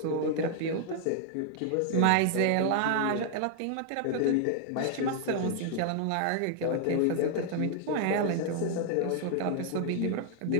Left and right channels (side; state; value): both; different; correlation 0.00